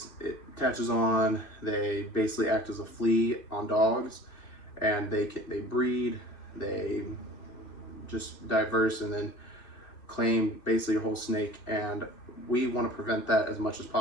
it attaches on. They basically act as a flea on dogs, and they breed. They just diverse and then claim basically a whole snake. And we want to prevent that as much as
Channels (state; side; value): late; right; 2.6 ms